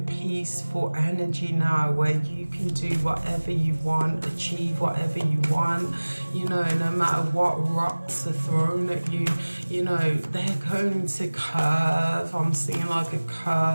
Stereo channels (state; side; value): inverted; both; correlation -1.00